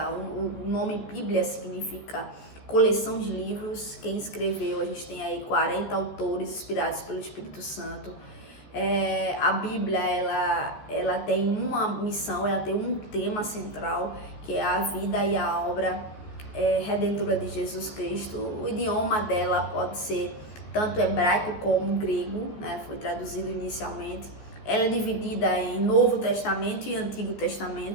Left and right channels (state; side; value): late; right; 14 ms